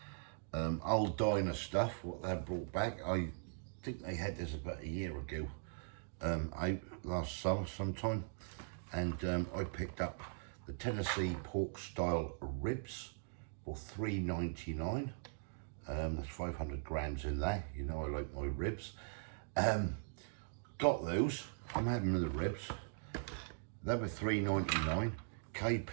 Aldiner stuff, what they brought back. I think they had this about a year ago, last summer sometime, and I picked up the Tennessee pork style ribs for $3.99. There's 500 grams in there. You know I like my ribs. Got those. I'm having the ribs. They were $3.99. Kay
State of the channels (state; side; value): silent; left; digital silence